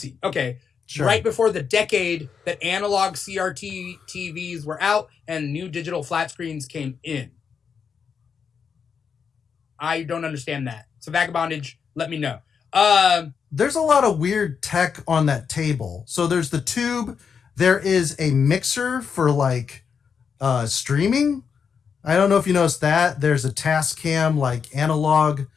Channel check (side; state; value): right; quieter; 6.5 dB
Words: Okay. Sure. right before the decade that analog CRT TVs were out and new digital flat screens came in. I don't understand that. So Vagabondage, let me know. There's a lot of weird tech on that table. So there's the tube. There is a mixer for like streaming. I don't know if you noticed that. There's a Tascam like analog